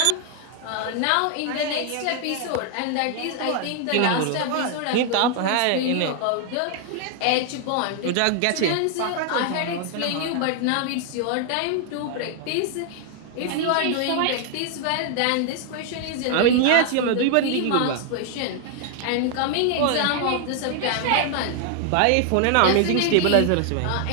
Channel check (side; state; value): both; different; correlation 0.00